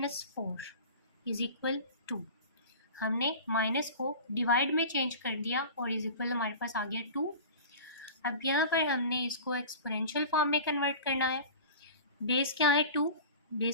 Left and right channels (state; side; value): inverted; both; correlation -0.36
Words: 4 is equal 2। हमने माइनस को डिवाइड में चेंज कर दिया और इज इक्वल हमारे पास आ गया 2। अब यहाँ पर हमने इसको एक्सपोनेंशियल फॉर्म में कन्वर्ट करना है। बेस क्या है 2,